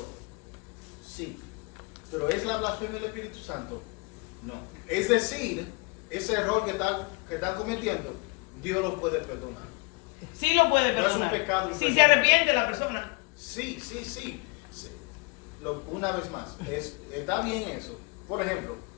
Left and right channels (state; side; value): quieter; right; 29.3 dB